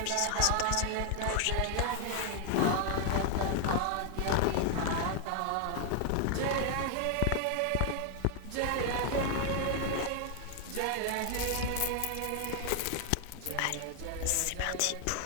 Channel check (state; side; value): different; both; correlation 0.00